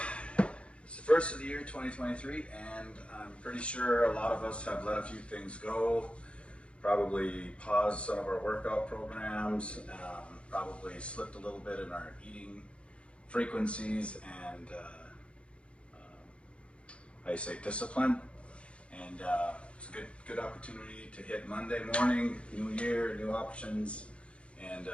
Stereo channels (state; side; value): late; right; 0.060 ms